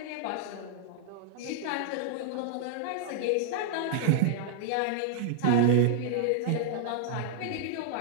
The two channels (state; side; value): different; both; correlation -0.01